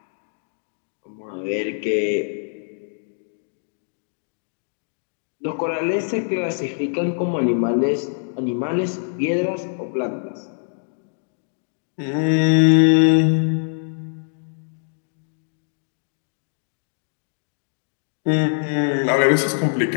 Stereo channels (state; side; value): silent; right; digital silence